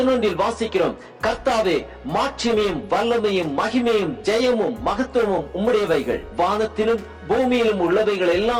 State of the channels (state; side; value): identical; both; correlation 1.00